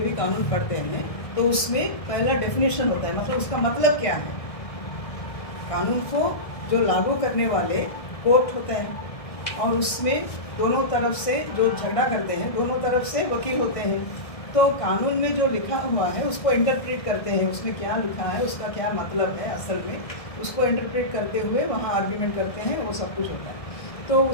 कानून पढ़ते हैं तो उसमें पहला डेफिनेशन होता है, मतलब उसका मतलब क्या है। कानून को जो लागू करने वाले कोर्ट होते हैं, और उसमें दोनों तरफ से जो झगड़ा करते हैं, दोनों तरफ से वकील होते हैं। तो कानून में जो लिखा हुआ है उसको इंटरप्रेट करते हैं, उसमें क्या लिखा है, उसका क्या मतलब है असल में, उसको इंटरप्रेट करते हुए वहाँ आर्ग्यूमेंट करते हैं, वो सब कुछ होता है। तो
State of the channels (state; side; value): late; right; 1.6 ms